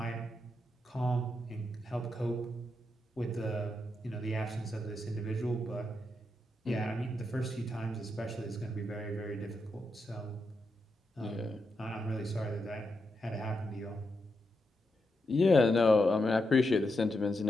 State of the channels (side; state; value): both; normal; correlation 0.84